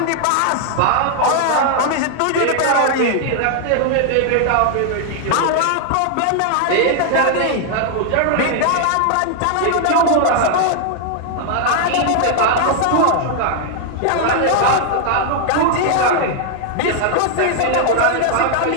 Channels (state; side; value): different; both; correlation 0.00